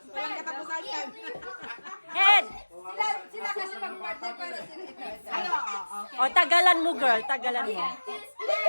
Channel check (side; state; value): both; inverted; correlation -1.00